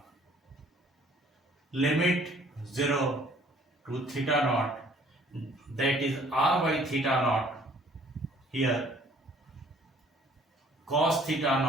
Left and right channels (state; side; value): normal; both; correlation 0.57